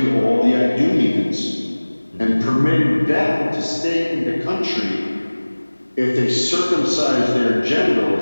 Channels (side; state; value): both; inverted; correlation -1.00